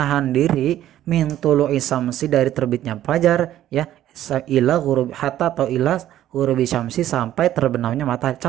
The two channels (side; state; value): left; quieter; 12.6 dB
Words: diri min tului samsi dari terbitnya fajar ya, ila ghurubi hatta atau ila ghurubi syamsi sampai terbenamnya matahari.